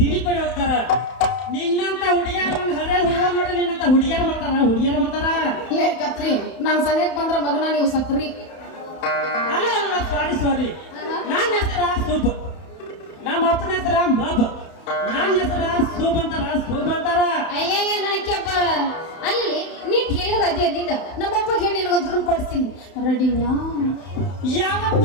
ಕಡೆ ಹೋಗ್ತಾರ ನಿನ್ನಂತ ಹುಡುಗಿಯರು ಒಂದು ಹರೇ ಹುಡುಗ ನೋಡಿ ನಿನ್ನಂತ ಹುಡುಗಿಯರು ಬರ್ತಾರ ಲೇ ಕತ್ರಿ ನಾನು ಸನಿಯಕ್ ಬಂದ್ರ ಮಗನ ನೀವು ಸತ್ರಿ ಅಲ್ಲ ಸಾರಿ ನನ್ನ ಹೆಸರ ಸೂಪ್ ನಮ್ಮ ಅಪ್ಪನ ಹೆಸರ ಮಬ್ ನನ್ನ ಹೆಸರ ಸೂಪ್ ಅಂತಾರ ಅಯ್ಯಯ್ಯ ನನಕ್ಕೆಪ್ಪ ಅಲ್ಲಿ ನೀ ಟೇಲರ್ ಅದೇ ನೀನು ನಮ್ಮಪ್ಪ ಹೇಳಿ ನಿನಗೊಂದು ರೂಮ್ ಕೊಡಿಸ್ತೀನಿ ರೆಡಿನಾ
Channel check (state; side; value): late; right; 31 ms